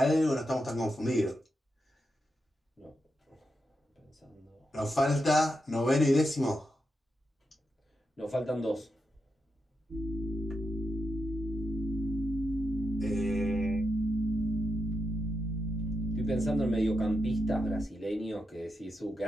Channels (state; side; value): normal; both; correlation 0.86